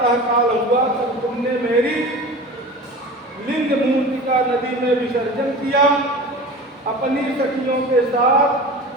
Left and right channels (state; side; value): normal; both; correlation 0.35